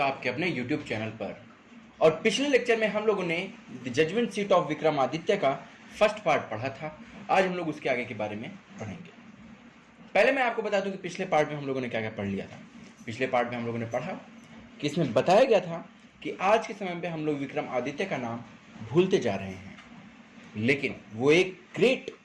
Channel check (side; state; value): both; identical; correlation 1.00